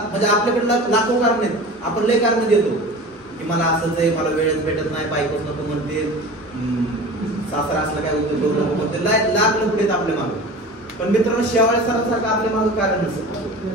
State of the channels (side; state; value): both; normal; correlation 0.36